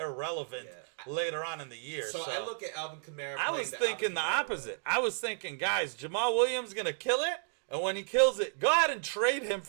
later on in the year. So I look at Alvin Kamara. I was thinking the opposite. I was thinking, guys, Jamal Williams going to kill it, and when he kills it, go ahead and trade him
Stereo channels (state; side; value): silent; left; digital silence